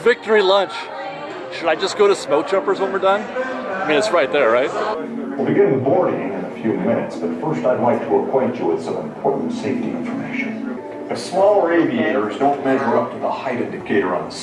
lunch. Should I just go to Smoke Jumpers when we're done? I mean, it's right there, right? We'll begin boarding in a few minutes, but first I'd like to acquaint you with some important safety information. The smaller aviators don't measure up to the height indicator on the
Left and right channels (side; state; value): both; identical; correlation 1.00